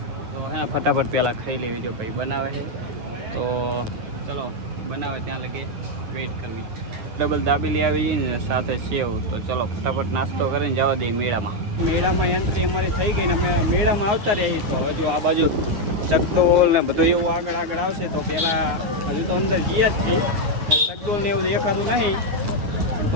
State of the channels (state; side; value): late; left; 9.6 ms